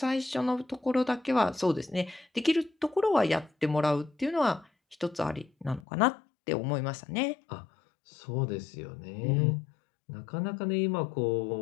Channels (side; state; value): right; drops out; at 5.9 s